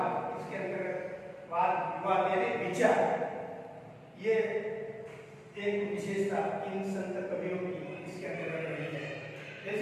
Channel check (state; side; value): identical; both; correlation 1.00